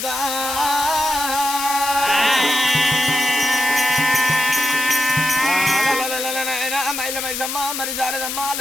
మైసమ్మ మరి శారదమ్మ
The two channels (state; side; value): noise; left; hiss, 4 dB below the sound